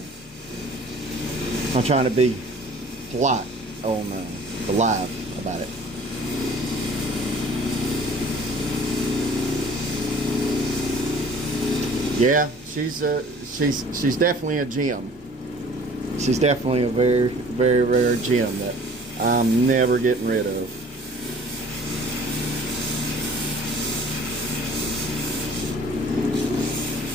I'm trying to be polite on the live about it. Yeah, she's definitely a gem. She's definitely a very, very rare gem that I'm never getting rid of.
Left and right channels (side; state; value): both; normal; correlation 0.50